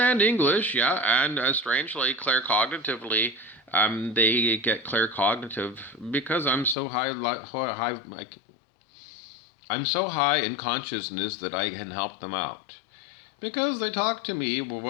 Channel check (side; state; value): right; drops out; at 6.8 s